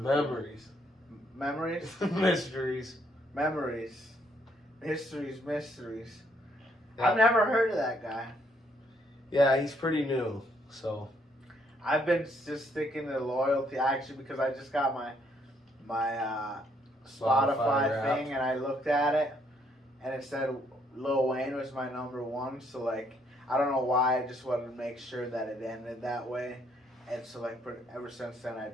Memories? Mysteries. Memories. Mysteries. Yeah. I've never heard of that guy. Yeah, he's pretty new. So. I've been just sticking to loyalty actually because I just got my Spotify Wrapped. thing and I looked at it and it said Lil Wayne was my number one. So like I don't know why, I just wanted to make sure that it ended that way. And so like ever since then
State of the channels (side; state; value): both; normal; correlation 0.70